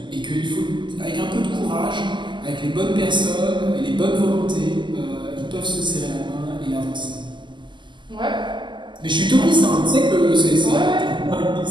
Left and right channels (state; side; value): late; left; 0.22 ms